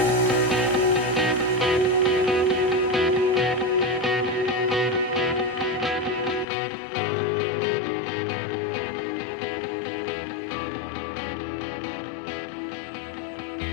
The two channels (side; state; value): right; drops out; at 6.5 s